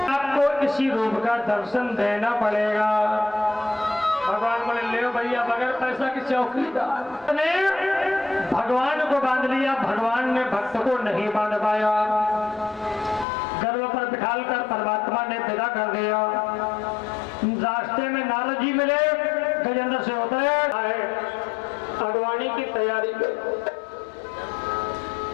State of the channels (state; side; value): drops out; right; at 13.2 s